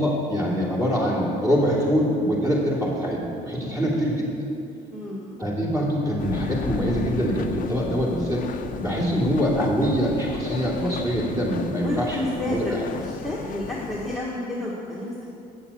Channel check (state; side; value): normal; both; correlation 0.63